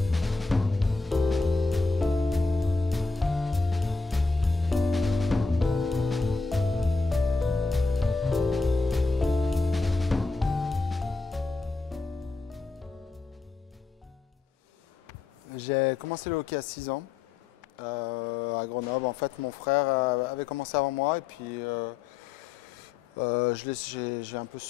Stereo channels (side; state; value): right; quieter; 4.0 dB